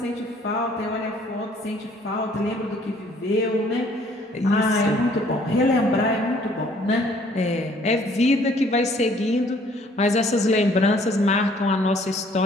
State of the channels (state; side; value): normal; both; correlation 0.59